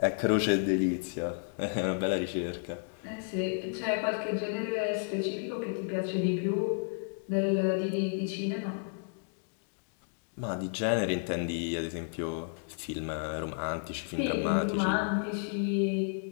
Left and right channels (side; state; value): right; silent; digital silence